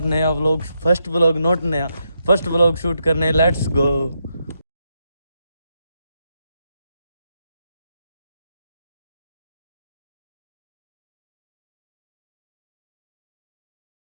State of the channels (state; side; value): inverted; both; correlation -0.82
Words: नया व्लॉग, फर्स्ट व्लॉग, नॉट नया, फर्स्ट व्लॉग शूट करने। Let's go.